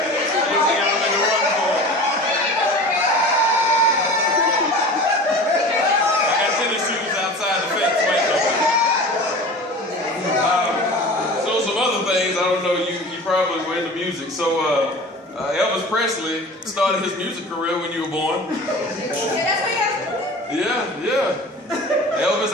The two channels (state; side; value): normal; both; correlation 0.37